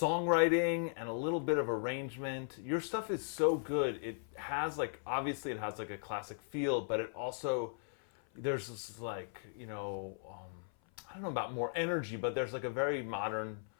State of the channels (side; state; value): right; silent; 53 dB below the other